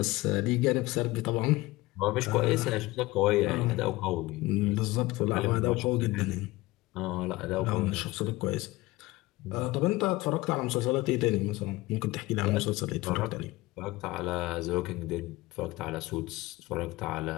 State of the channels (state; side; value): quieter; right; 19.9 dB